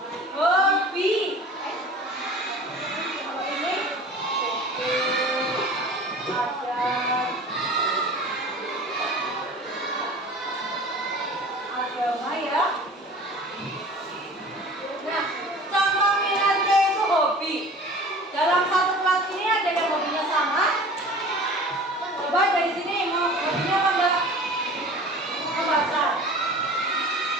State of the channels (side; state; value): both; normal; correlation 0.42